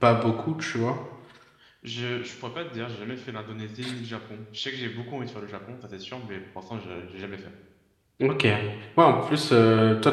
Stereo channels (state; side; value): identical; both; correlation 1.00